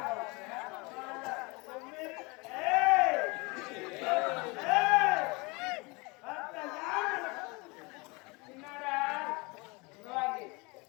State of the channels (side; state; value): right; quieter; 27.1 dB